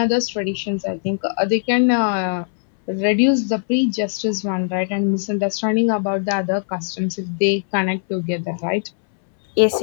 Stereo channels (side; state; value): right; silent; 66 dB below the other